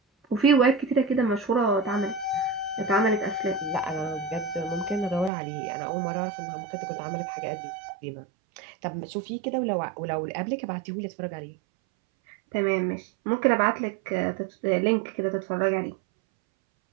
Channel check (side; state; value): left; drops out; at 5.3 s